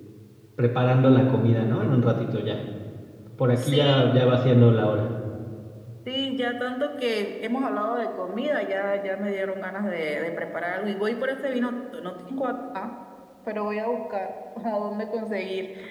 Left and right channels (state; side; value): identical; both; correlation 1.00